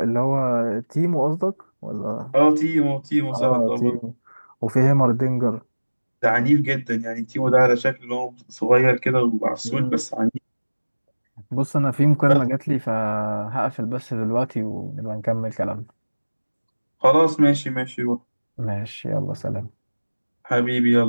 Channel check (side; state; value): both; inverted; correlation -1.00